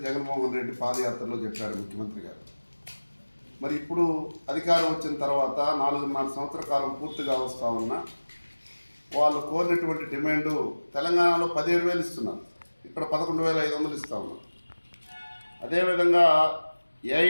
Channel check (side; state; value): both; inverted; correlation -1.00